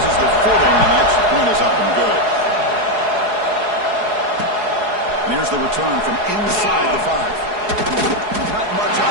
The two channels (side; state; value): left; late; 4.7 ms